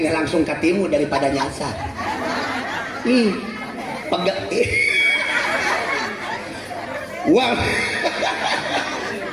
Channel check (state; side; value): identical; both; correlation 1.00